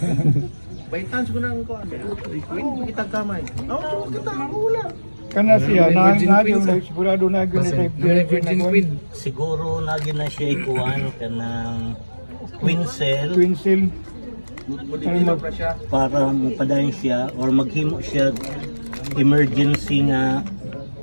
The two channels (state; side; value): inverted; both; correlation -1.00